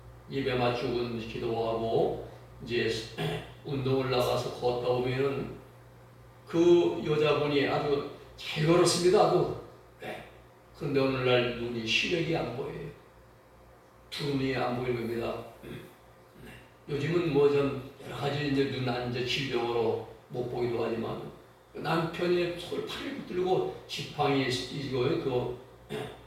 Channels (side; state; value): both; identical; correlation 1.00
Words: 예배 마치고 기도하고 이제 운동을 나가서 걷다 오면은 그 여자분이 아주 잘 걸었습니다. 아주. 그런데 오늘날 눈이 시력이 안 보여요. 두 눈이 안 보이는 겁니다. 요즘은 뭐 좀 여러 가지 이제 눈 이제 질병으로 못 보기도 하지만 남편이 손을 팔을 붙들고 지팡이 이거에 그